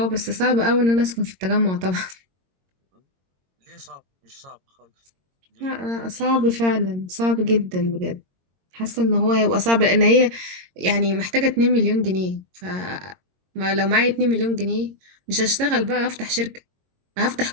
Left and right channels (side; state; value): left; late; 22 ms